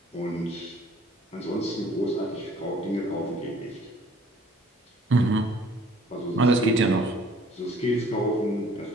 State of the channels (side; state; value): both; normal; correlation 0.56